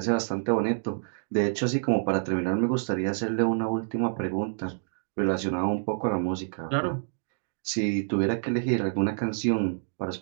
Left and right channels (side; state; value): left; silent; digital silence